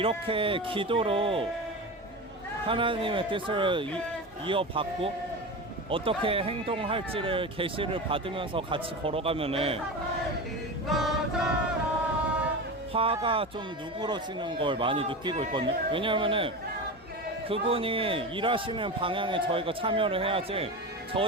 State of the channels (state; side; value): normal; both; correlation 0.25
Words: 기도로 하나님의 뜻을 이어받고 어떻게 행동할지를 계시를 받으면서 같이 걸어가면은 화가 좀 누그러지는 걸 많이 느끼고 있거든요. 왜냐면은 그분이 일하시는 방향에 저희가 참여를 해야지,